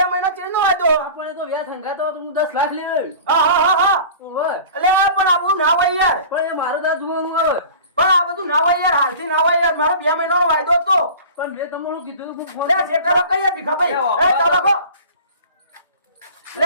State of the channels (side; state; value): both; inverted; correlation -0.40